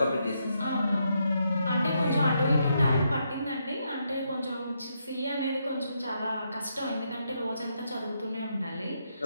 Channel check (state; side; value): inverted; both; correlation -0.79